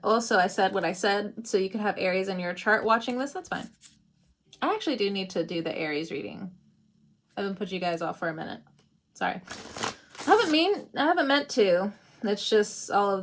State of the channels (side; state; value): both; identical; correlation 1.00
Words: also I said what I said, so you could have Aries in your chart watching this. That's fine. I actually do need to do the Aries reading. I haven't put you guys off for a minute. Sorry. I haven't meant to. It's just all